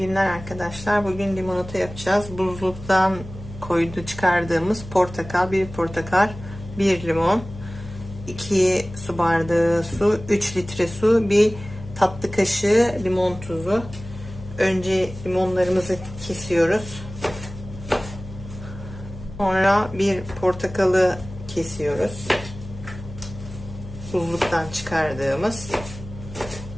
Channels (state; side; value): noise; left; hum, 13 dB below the sound